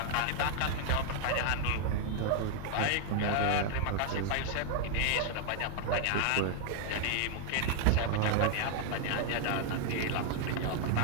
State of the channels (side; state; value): both; different; correlation 0.00